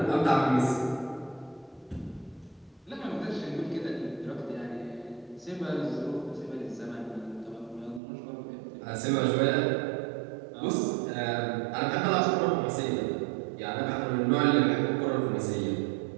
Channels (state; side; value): drops out; left; at 8.0 s